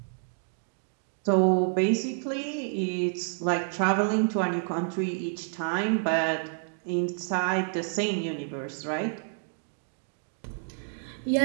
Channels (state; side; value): silent; left; digital silence